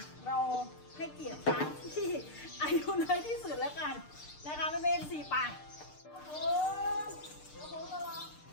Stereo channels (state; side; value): late; right; 6.7 ms